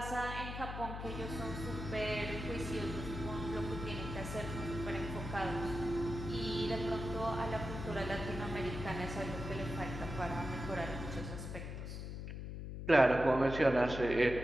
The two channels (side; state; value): left; noise; hum, 7 dB below the sound